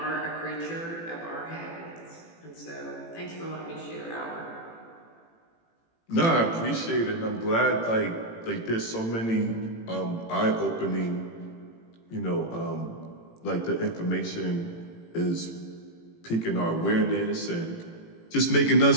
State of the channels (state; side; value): late; right; 18 ms